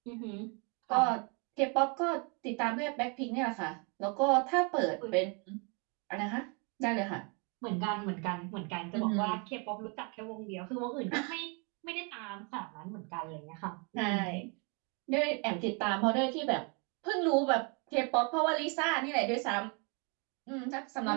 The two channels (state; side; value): quieter; left; 34.2 dB